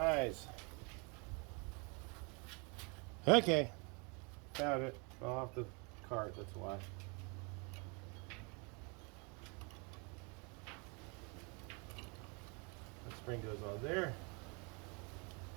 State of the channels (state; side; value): quieter; left; 32.5 dB